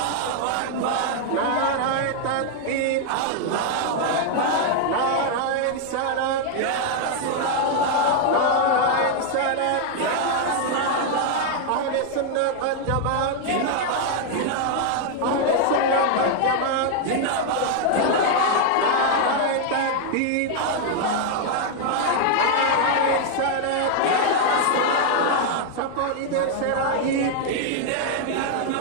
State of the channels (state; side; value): different; both; correlation 0.00